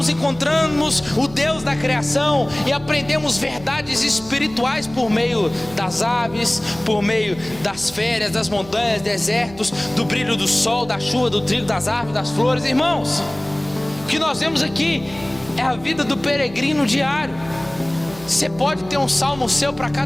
encontramos o Deus da criação e aprendemos verdades espirituais por meio das aves, por meio das férias, das montanhas, desertos, do brilho do sol, da chuva, do trigo, das árvores, das flores. Irmãos, o que nós vemos aqui é a vida do peregrino diário. Você pode ter um salmo seu para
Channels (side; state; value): right; noise; hum, 19 dB below the sound